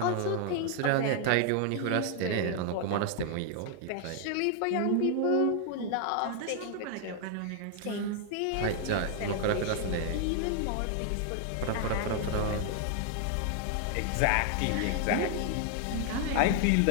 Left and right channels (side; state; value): both; different; correlation 0.00